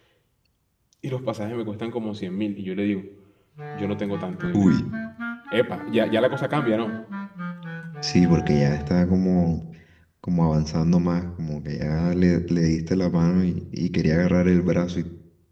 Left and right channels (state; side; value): identical; both; correlation 1.00